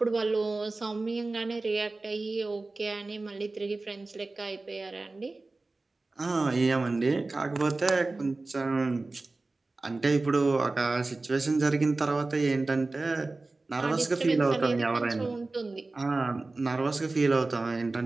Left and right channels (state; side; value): quieter; left; 3.3 dB